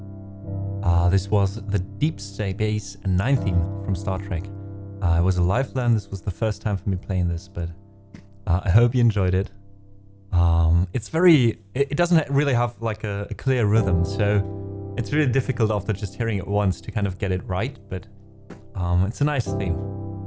This was the Deep Space Nine theme from Star Trek. It was a live learn. This was the first time for me playing this, but I hope you enjoyed it. It doesn't really have like a clear rhythm, so it's really difficult after just hearing it once to kind of get it right, but it's a nice theme.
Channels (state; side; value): identical; both; correlation 1.00